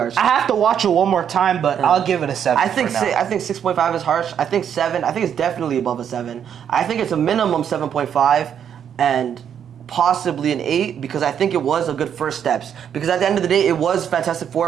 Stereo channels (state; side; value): quieter; left; 8.6 dB